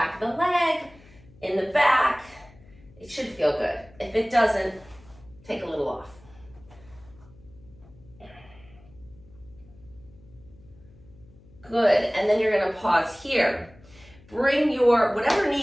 of the leg, in the back. It should feel good. If it doesn't, take a little off. Good, and then you're gonna pause here. Bring your, whatever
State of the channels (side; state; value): left; noise; hum, 25 dB below the sound